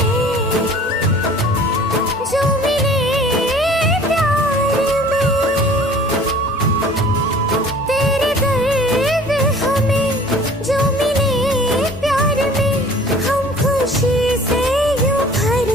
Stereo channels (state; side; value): normal; both; correlation 0.49